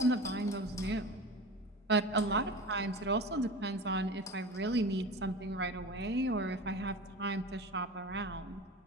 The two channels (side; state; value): both; normal; correlation 0.32